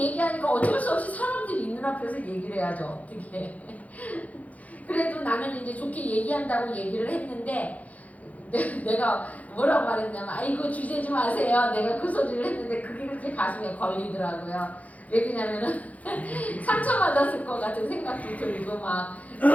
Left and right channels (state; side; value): late; right; 0.072 ms